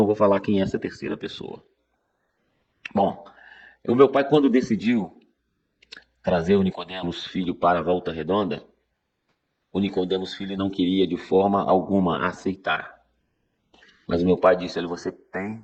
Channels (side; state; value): both; identical; correlation 1.00